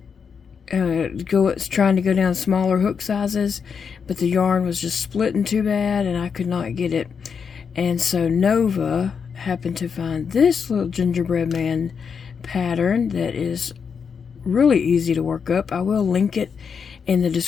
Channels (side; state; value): right; quieter; 6.3 dB